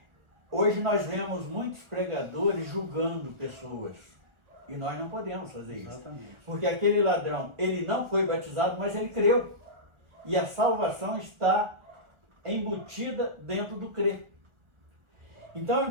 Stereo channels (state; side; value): late; left; 1.4 ms